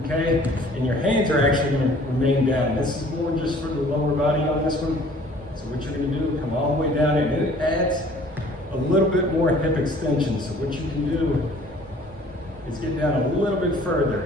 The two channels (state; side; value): normal; both; correlation 0.53